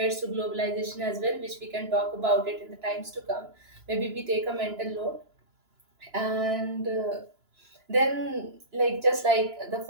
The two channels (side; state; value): left; late; 2.9 ms